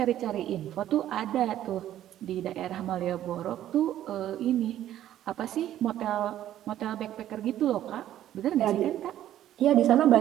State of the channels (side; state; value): left; quieter; 12.2 dB